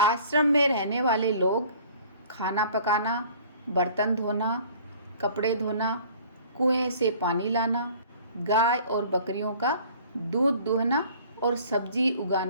आश्रम में रहने वाले लोग खाना पकाना, बर्तन धोना, कपड़े धोना, कुएं से पानी लाना, गाय और बकरियों का दूध दुहना और सब्जी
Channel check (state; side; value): inverted; both; correlation -0.50